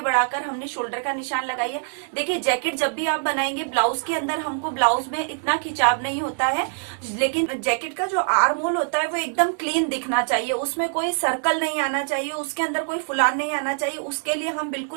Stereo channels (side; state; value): left; silent; digital silence